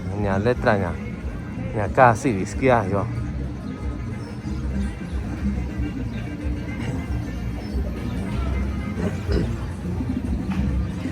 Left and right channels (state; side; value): identical; both; correlation 1.00